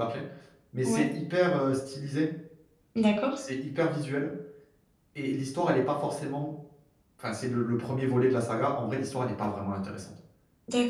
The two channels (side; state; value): both; identical; correlation 1.00